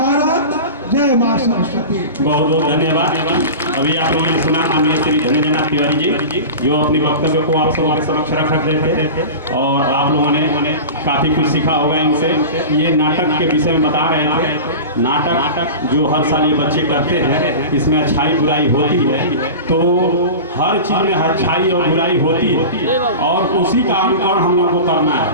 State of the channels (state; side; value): inverted; both; correlation -0.31